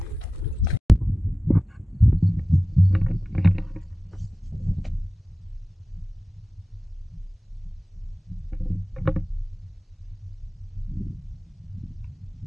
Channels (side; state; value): both; normal; correlation 0.95